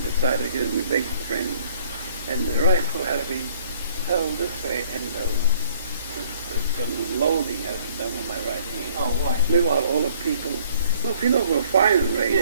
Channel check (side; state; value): both; inverted; correlation -0.60